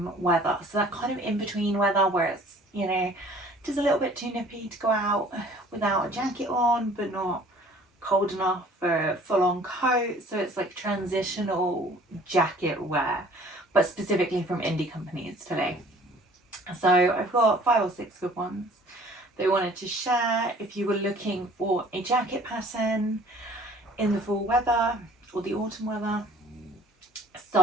weather. So that kind of in between weather where it's, you know, just a little bit too nippy to go out without a jacket on, but not cold enough for a full-on coat. So it's like transitional jacket wear, but specifically from indie companies today. So I've got 5 or 6 good ones that I wanted to share if you were looking for a jacket pattern in the fall weather or the autumn weather.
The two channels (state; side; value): normal; both; correlation 0.52